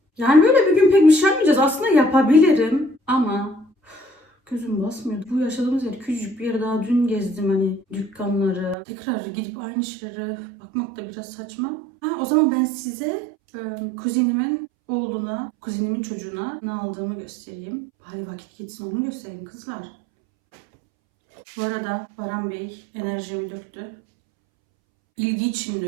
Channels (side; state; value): left; drops out; at 8.8 s